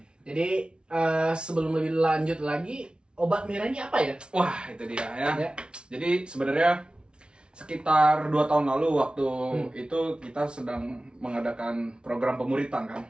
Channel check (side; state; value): left; late; 0.056 ms